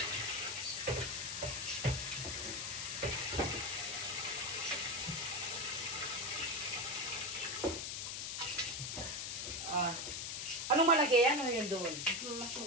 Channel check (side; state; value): left; noise; hiss, 3 dB below the sound